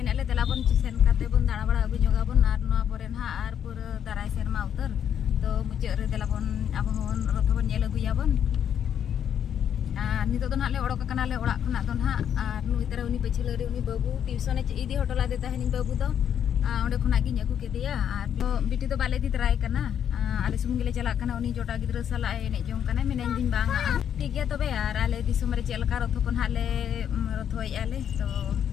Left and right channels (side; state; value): right; quieter; 9.0 dB